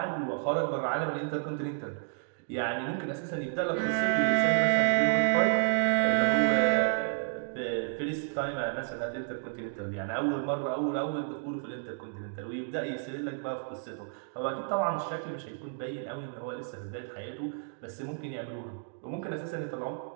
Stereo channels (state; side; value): silent; left; digital silence